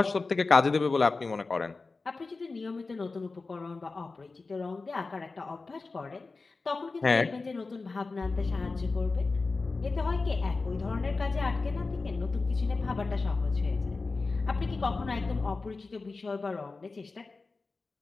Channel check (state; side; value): quieter; right; 3.9 dB